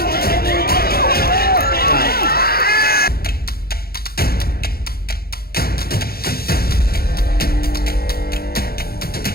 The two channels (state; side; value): late; right; 0.44 ms